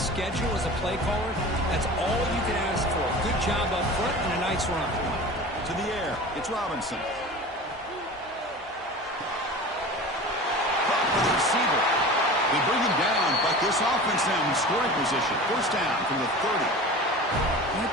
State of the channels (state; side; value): normal; both; correlation 0.35